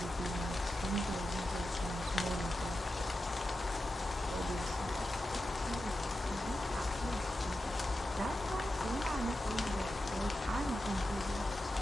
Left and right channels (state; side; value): normal; both; correlation 0.91